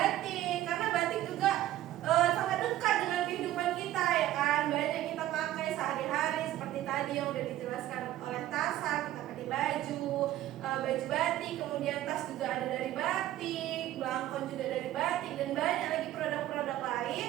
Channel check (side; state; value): left; quieter; 13.8 dB